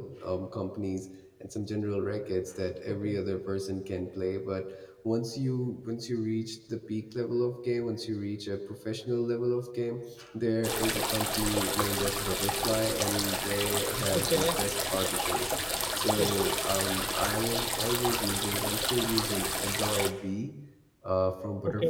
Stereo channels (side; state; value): both; identical; correlation 1.00